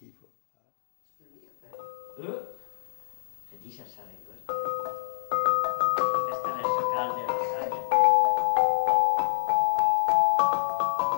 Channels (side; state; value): right; silent; digital silence